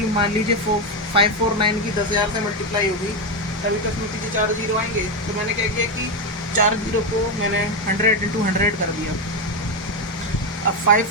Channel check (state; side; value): normal; both; correlation 0.09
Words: मान लीजिए 549 की 10,000 से मल्टीप्लाई होगी तभी तो इसमें पीछे 4 जीरो आएंगे। तो मैंने क्या किया कि 4 जीरो को मैंने 100 इंटू 100 कर दिया। अब